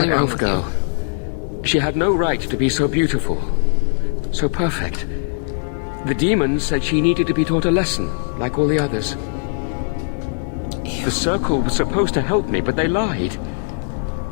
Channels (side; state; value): right; silent; digital silence